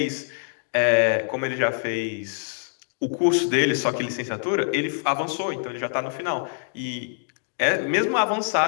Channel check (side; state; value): right; silent; digital silence